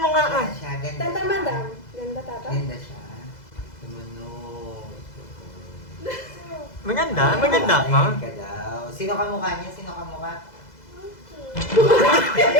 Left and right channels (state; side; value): late; right; 2.0 ms